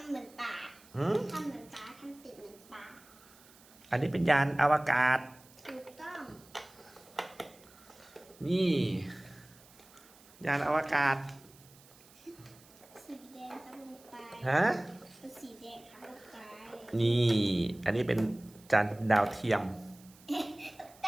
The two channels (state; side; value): noise; right; hiss, 25 dB below the sound